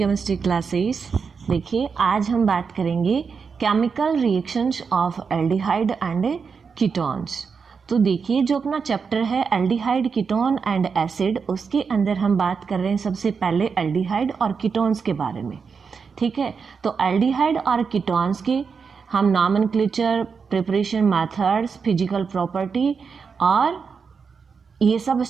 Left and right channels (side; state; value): left; quieter; 5.7 dB